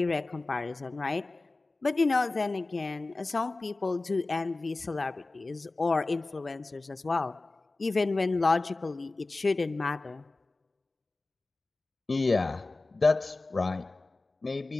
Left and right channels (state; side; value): quieter; right; 3.3 dB